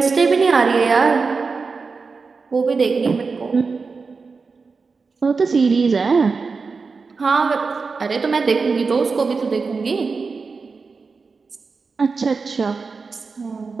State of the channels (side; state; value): left; quieter; 4.6 dB